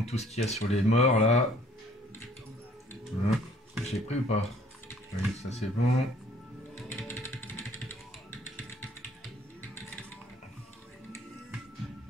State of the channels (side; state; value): both; normal; correlation 0.58